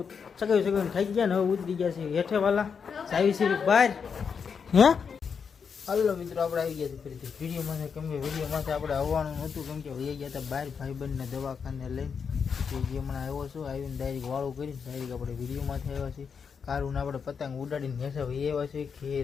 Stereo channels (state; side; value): quieter; right; 6.3 dB